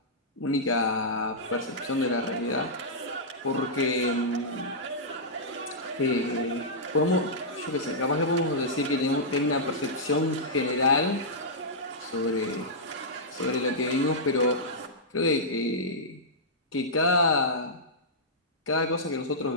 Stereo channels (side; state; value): both; normal; correlation -0.12